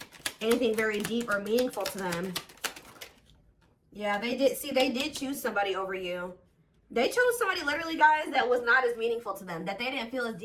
anything very deep or meaningful to them. Yeah, they did choose somebody over you. They chose somebody, literally, guys, that was not as meaningful to them, that they didn't feel as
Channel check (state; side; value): identical; both; correlation 1.00